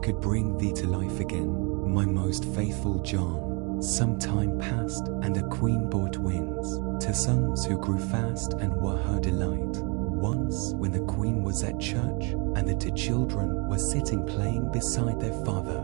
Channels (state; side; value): quieter; left; 32.4 dB